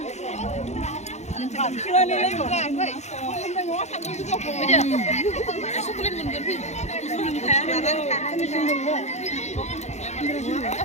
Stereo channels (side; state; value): right; late; 0.33 ms